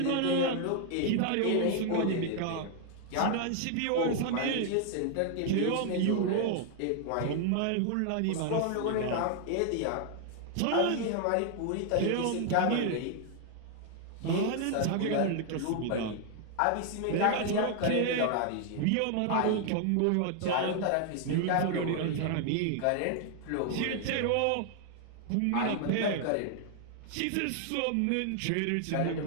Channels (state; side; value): different; both; correlation 0.00